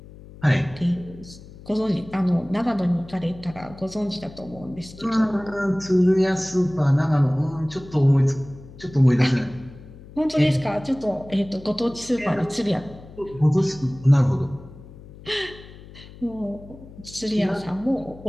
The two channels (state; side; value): noise; left; hum, 18 dB below the sound